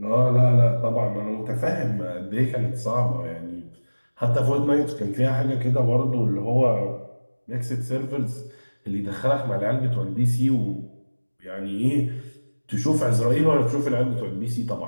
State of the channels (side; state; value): both; inverted; correlation -1.00